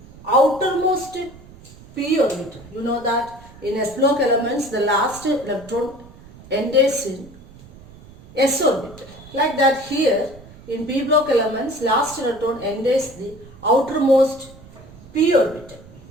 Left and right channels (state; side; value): noise; right; rumble, 21 dB below the sound